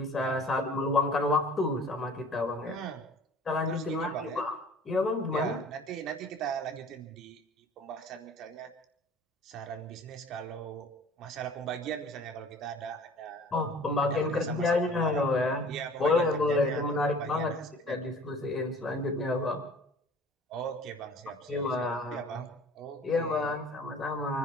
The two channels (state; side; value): normal; both; correlation 0.47